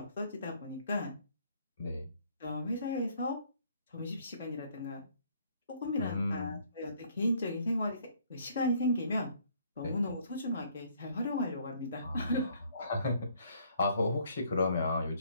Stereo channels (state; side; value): inverted; both; correlation -0.63